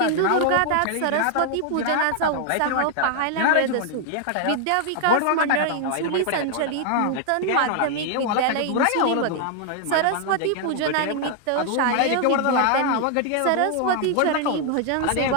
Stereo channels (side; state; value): both; different; correlation 0.00